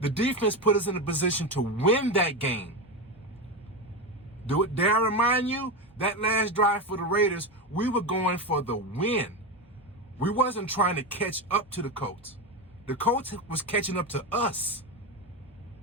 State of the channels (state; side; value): normal; both; correlation 0.16